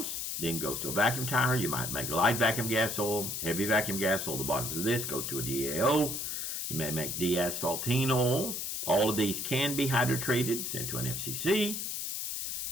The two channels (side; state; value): left; noise; hiss, 3 dB below the sound